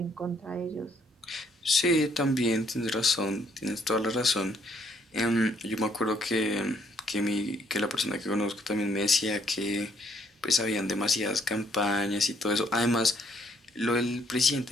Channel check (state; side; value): normal; both; correlation 0.67